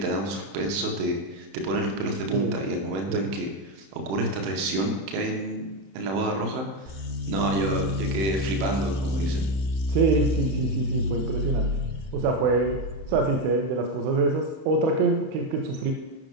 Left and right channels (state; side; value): late; left; 31 ms